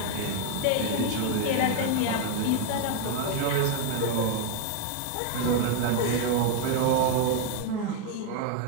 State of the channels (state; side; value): different; both; correlation 0.01